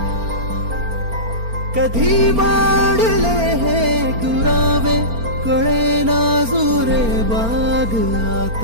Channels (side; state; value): left; late; 4.4 ms